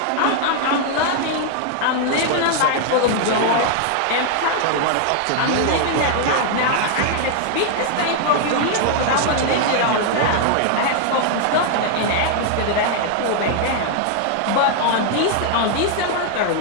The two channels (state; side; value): different; both; correlation 0.00